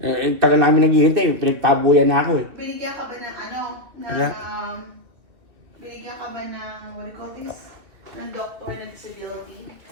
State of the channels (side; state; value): left; late; 2.9 ms